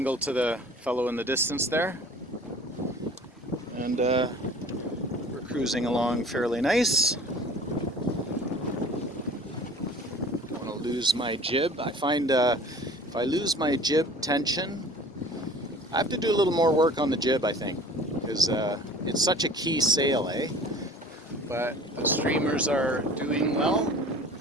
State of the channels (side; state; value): both; normal; correlation 0.46